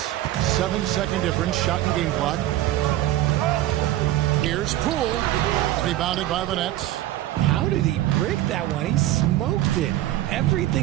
7-second difference, shot and game clock. Here's Poole, rebounded by the Nets. How did he break that one? He smoked it.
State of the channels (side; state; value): left; quieter; 14.4 dB